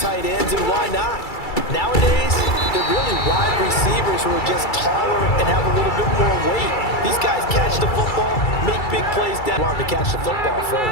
tight ends, and why not? Nowadays, they're really wide receivers who are just taller and have a little bit more weight. These guys catch the football, make big plays down. Want to catch the football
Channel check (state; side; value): late; right; 2.3 ms